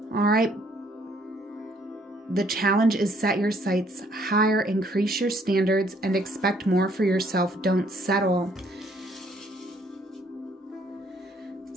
All right. The challenge is set your sights higher, increase your standards, and expect more for yourself. Don't settle.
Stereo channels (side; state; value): both; normal; correlation 0.65